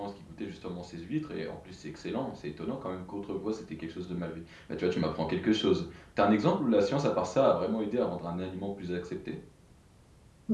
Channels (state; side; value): identical; both; correlation 1.00